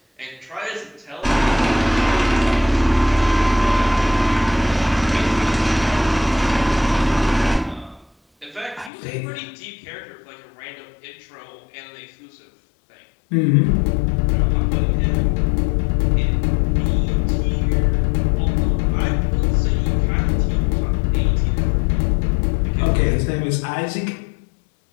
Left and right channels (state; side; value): drops out; right; at 8.9 s